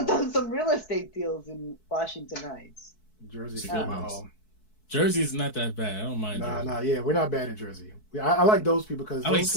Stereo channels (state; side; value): late; right; 4.6 ms